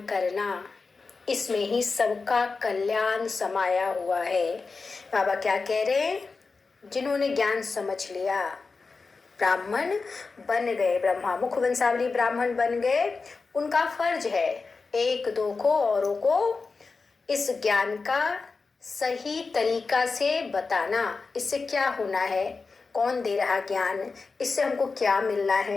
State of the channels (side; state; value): right; quieter; 4.3 dB